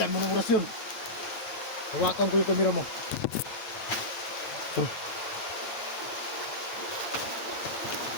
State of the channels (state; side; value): late; right; 8.8 ms